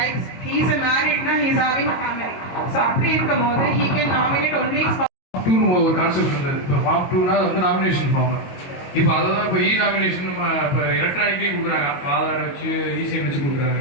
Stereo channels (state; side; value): late; right; 22 ms